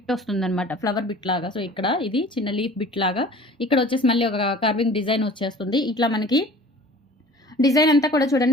వస్తుంది అనమాట, ఫ్లవర్ బిట్ లాగా. సో ఇక్కడ ఇది చిన్న లీఫ్ బిట్ లాగా, ఇక్కడ వచ్చేసి మళ్ళీ ఒక కర్వింగ్ డిజైన్ వచ్చేస్తుంది. ఇట్లా మనకి డిజైన్ అంతా కూడా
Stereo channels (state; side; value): normal; both; correlation 0.46